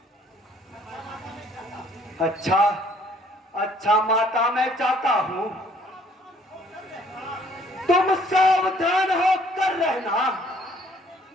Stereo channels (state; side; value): normal; both; correlation 0.60